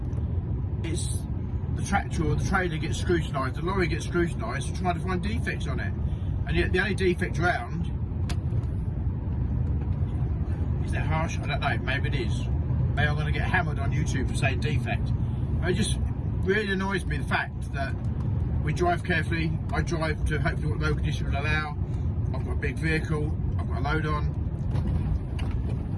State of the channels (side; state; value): both; identical; correlation 1.00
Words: it's the tractor or the trailer gets scrutinised, the lorry gets scrutinised, trying to find defects on it. And yet the only defect around, is that harsh? I don't know, maybe it is. Maybe I'm going to get hammered on YouTube for saying defect. It just really annoys me, the fact that we drive carefully. I drive to hopefully what road condition will allow. I've got a big vehicle, I've got a load on.